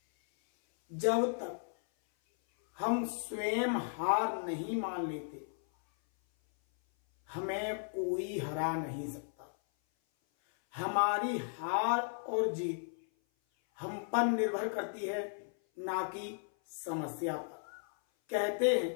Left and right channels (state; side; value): silent; right; 54 dB below the other